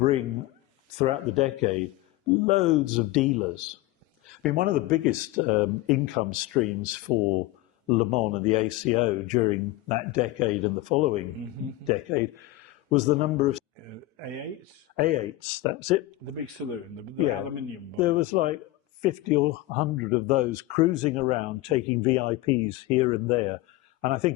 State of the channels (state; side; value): quieter; right; 17.5 dB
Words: throughout the decade, loads of dealers. I mean, one of the biggest income streams for Le Mans and the ACO during that decade and the following decade was the number of A8s? A8s, that's it. The big saloon, the aluminium one. There was like 50 or 100 of those cruising around, taking VIPs here and there. And I